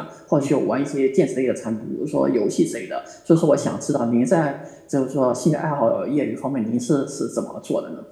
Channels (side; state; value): both; identical; correlation 1.00